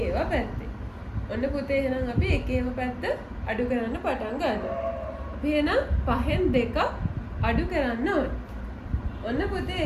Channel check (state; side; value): identical; both; correlation 1.00